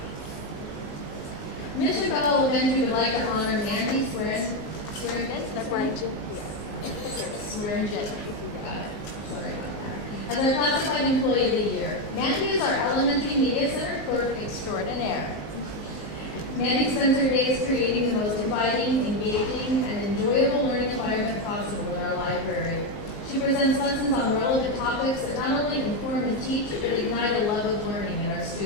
Mission Bell Elementary would like to honor Mandy Swearingen. Sorry about that. As our classified employee of the year. Mandy is our elementary media center clerk extraordinaire. Mandy spends her days creating the most inviting, engaging, and enjoyable learning environment possible in our library. She presents lessons on relevant topics that not only inform and teach, but ignite a love of learning in our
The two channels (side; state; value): right; late; 19 ms